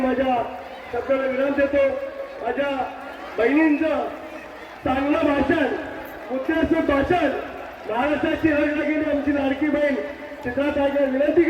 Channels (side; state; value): both; identical; correlation 1.00